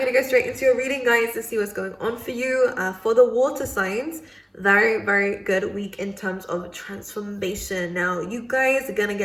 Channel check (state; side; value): identical; both; correlation 1.00